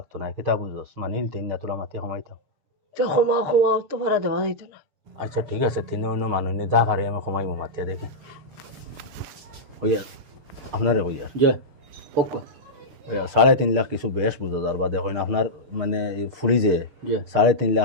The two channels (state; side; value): late; left; 6.5 ms